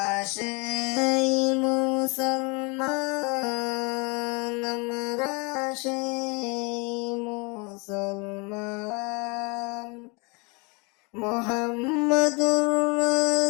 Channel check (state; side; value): quieter; right; 30.4 dB